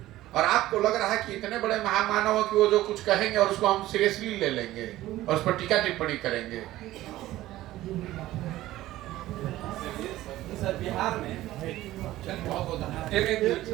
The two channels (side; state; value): left; quieter; 15.6 dB